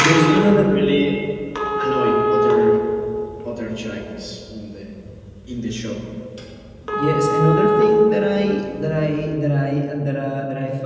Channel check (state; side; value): identical; both; correlation 1.00